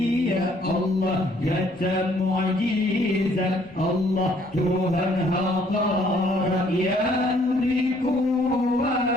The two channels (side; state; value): left; noise; rumble, 28 dB below the sound